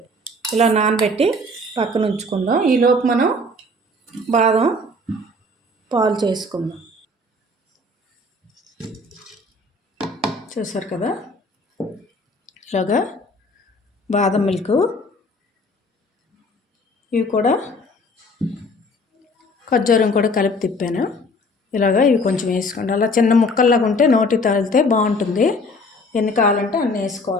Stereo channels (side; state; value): both; normal; correlation 0.51